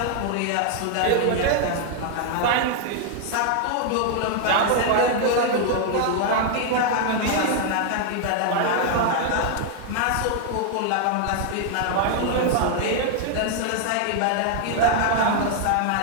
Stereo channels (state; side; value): different; both; correlation 0.00